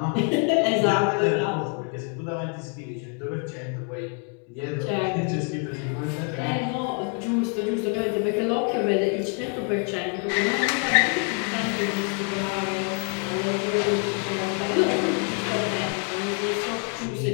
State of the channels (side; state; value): right; quieter; 39.2 dB